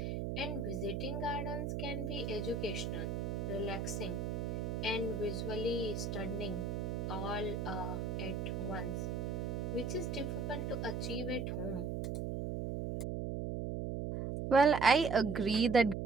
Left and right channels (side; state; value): right; noise; hum, 2 dB below the sound